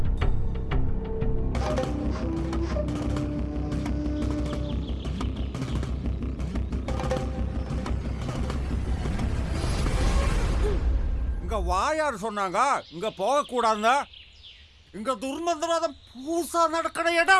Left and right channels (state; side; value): identical; both; correlation 1.00